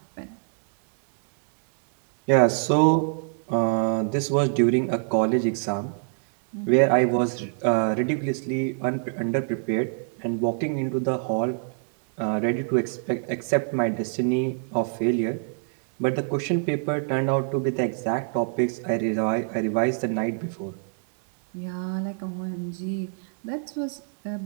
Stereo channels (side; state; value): left; silent; 62 dB below the other